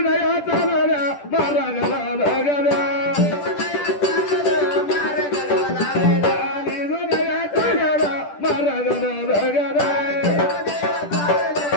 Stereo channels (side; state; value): right; late; 10 ms